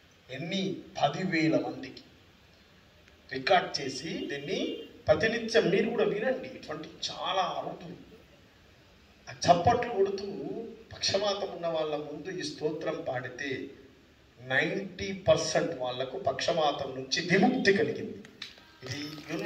ఎన్ని 10,000 మందికి రికార్డ్ చేసి దీన్ని ప్రతినిత్యం మీరు కూడా వినండి. ఇటువంటి చాలా అరుదు ఆ చప్పట్లు కొడుతూ పక్షవాతం ఉన్న వాళ్ళ ముందు ఈ స్తోత్రం పాడితే 90% వాళ్లకు పక్షవాతం నుంచి విముక్తి కలిగింది. ఇది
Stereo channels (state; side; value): identical; both; correlation 1.00